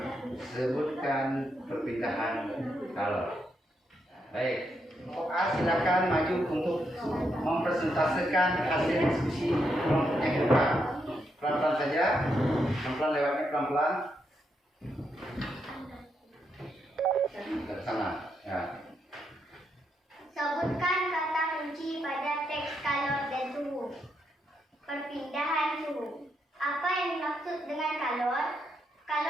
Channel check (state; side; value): normal; both; correlation 0.80